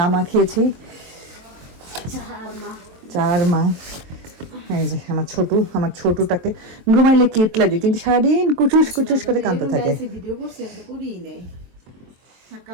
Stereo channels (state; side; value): late; left; 23 ms